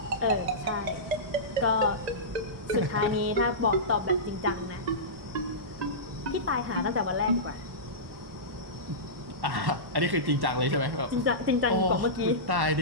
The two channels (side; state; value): left; late; 1.1 ms